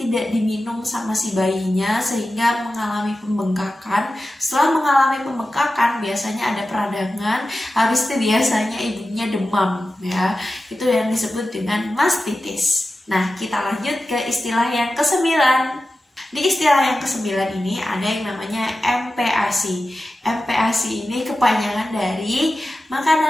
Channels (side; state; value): both; normal; correlation 0.94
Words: diminum sama si bayinya sehingga mengalami pembengkakan. Setelah mengalami pembengkakan biasanya ada peradangan, habis itu biasanya ibunya demam ya. Itu yang disebut dengan mastitis. Nah, kita lanjut ke istilah yang ke-9. Di istilah yang ke-9 ini ada yang namanya MPASI. MPASI ini kepanjangan dari